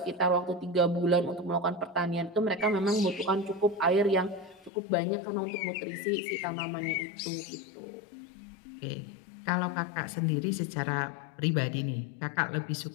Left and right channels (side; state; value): right; drops out; at 4.7 s